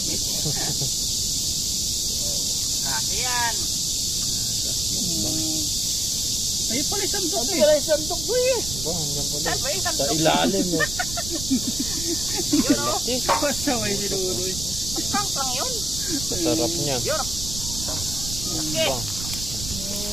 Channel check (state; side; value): noise; right; rumble, 7 dB below the sound